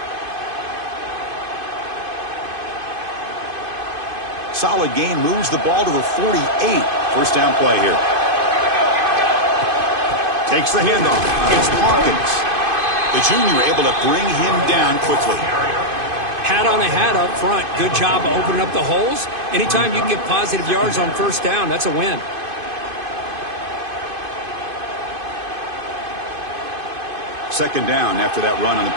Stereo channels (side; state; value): left; late; 2.5 ms